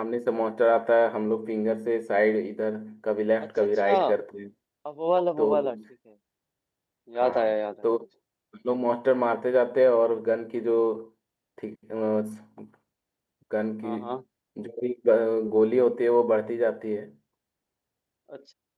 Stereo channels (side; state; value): both; identical; correlation 1.00